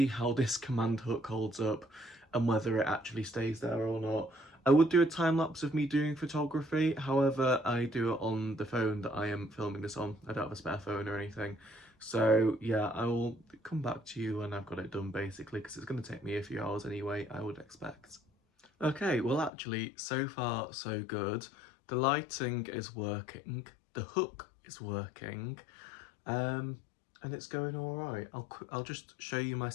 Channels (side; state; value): right; drops out; at 19.5 s